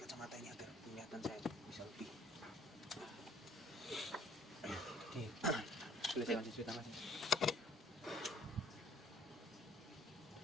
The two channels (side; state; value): both; normal; correlation 0.59